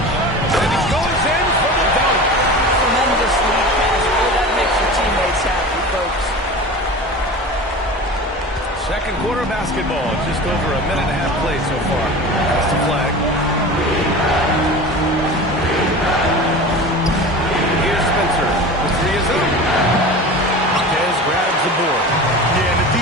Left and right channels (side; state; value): both; normal; correlation 0.34